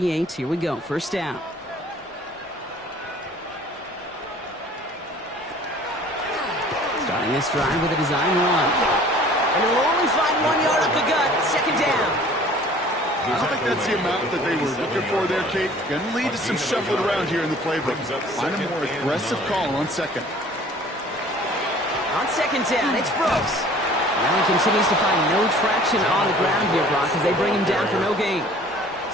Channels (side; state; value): both; normal; correlation 0.50